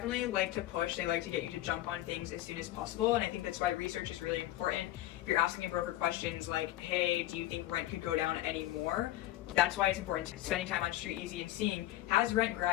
like to push. They like to get you to jump on things as soon as possible. And I think that's why research is really important. If you're asking a broker questions like, hey, do you think rent could go down any more? That's why it's important spending time on Street Easy and seeing, has rent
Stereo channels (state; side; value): quieter; right; 15.0 dB